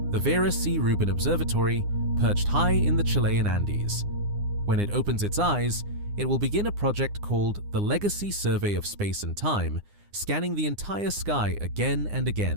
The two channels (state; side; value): late; left; 9.8 ms